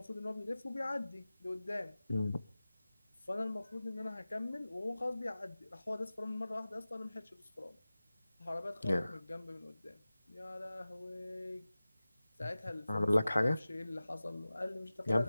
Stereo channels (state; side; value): inverted; both; correlation -0.97